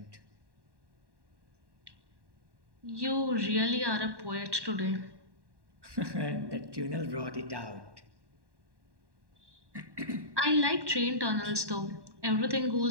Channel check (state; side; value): late; left; 1.1 ms